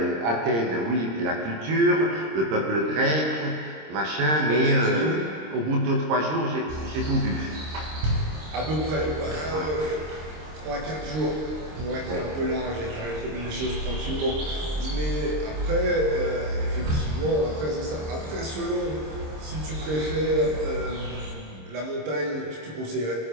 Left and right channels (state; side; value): late; left; 26 ms